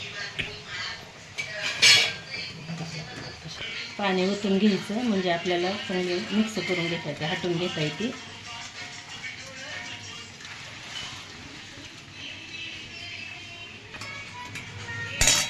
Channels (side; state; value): both; identical; correlation 1.00